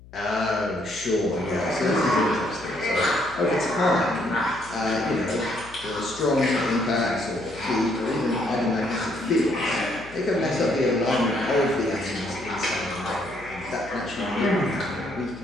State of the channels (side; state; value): left; noise; hum, 21 dB below the sound